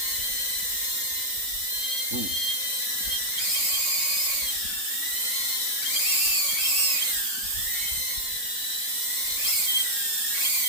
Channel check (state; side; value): late; right; 3.6 ms